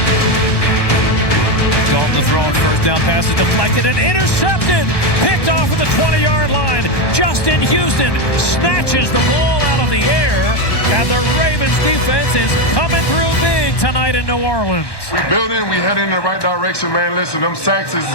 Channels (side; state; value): right; late; 1.7 ms